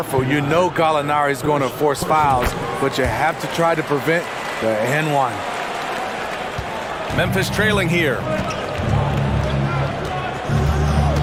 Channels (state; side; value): identical; both; correlation 1.00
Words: You know Gallinari is going to force fouls, but you have to try to prevent the N1. Memphis trailing here.